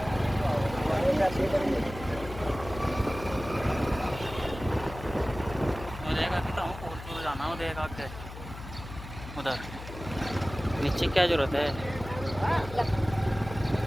वो देखा कि तो पोल जाना, वो देखा के उधर नीचे क्या जरूरत है।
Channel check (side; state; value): left; noise; hum, 12 dB below the sound